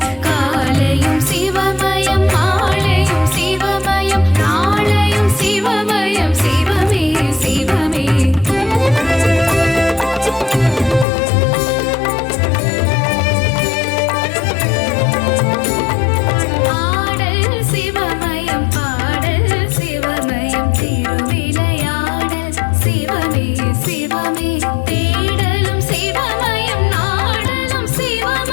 காலையும் சிவமயம், மாலையும் சிவமயம், நாளையும் சிவமயம், சிவமே சிவமே. ஆடல் சிவமயம், பாடல் சிவமயம், திருவிளையாடல் சிவமே சிவமே. தேடலும் சிவமயம், நாடலும்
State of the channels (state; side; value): drops out; right; at 11.1 s